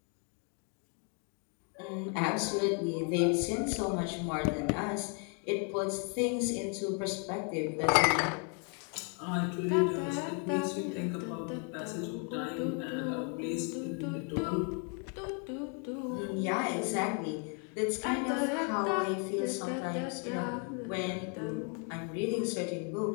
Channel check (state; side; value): quieter; right; 39.4 dB